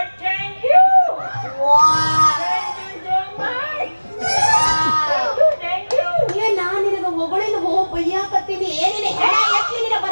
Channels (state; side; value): inverted; both; correlation -1.00